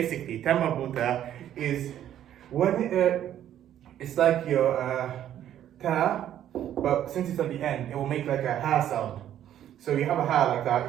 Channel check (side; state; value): left; quieter; 11.1 dB